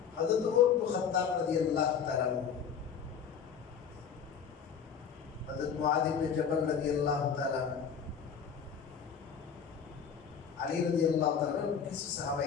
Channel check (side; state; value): right; quieter; 7.2 dB